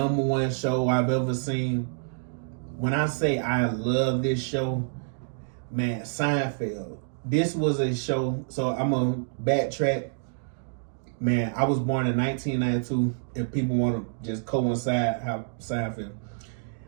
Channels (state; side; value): silent; left; digital silence